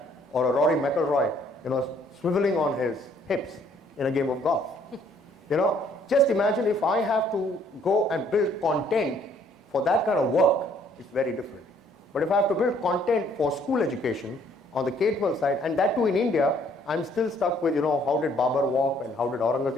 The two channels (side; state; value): both; normal; correlation 0.63